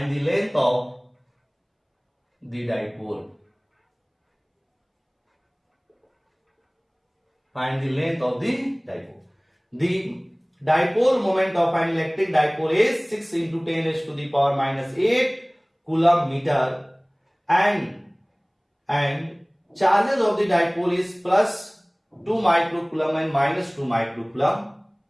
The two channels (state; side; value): identical; both; correlation 1.00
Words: the dipole। Find the length of the dipole. The dipole moment of an electric dipole is 6 into 10 raised to the power minus 8 coulomb meter and charges of the dipole is plus 2 microcoulomb and minus 2 microcoulomb,